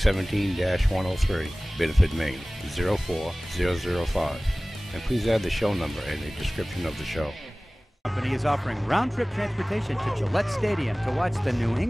Biddeford, Maine, 04005. And please add the show number in the description of the show. Company is offering round-trip transportation to Gillette Stadium to watch the New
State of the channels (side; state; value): both; normal; correlation 0.98